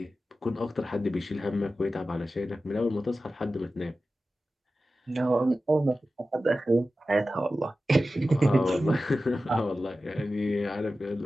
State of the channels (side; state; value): both; normal; correlation 0.94